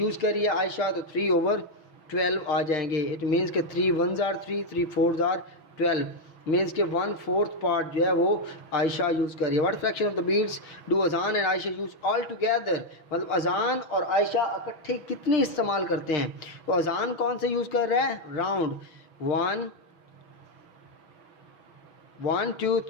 कर रही है आयशा, तो 3/12 आ जाएंगे। इट मीन्स के 3 1s are 3 3 4s are 12, means के 1/4 पार्ट जो है वो आयशा यूज़ कर रही है। What fraction of the beads do Azaan and Ayesha use all together? मतलब अजान और आयशा इकट्ठे कितने इस्तेमाल करते हैं? तो अजान कौन से यूज़ कर रहा है? राउंड 1 1 2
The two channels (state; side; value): late; right; 6.2 ms